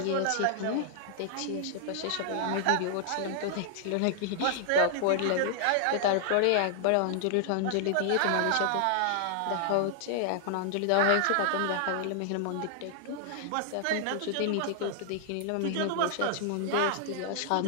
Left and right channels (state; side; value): different; both; correlation -0.01